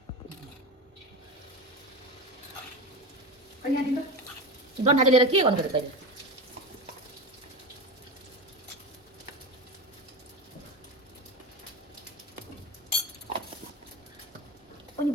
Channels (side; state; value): both; normal; correlation 0.22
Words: डन्ठा चाहिँ लिएर के गर्नु पर्यो तैँले अनि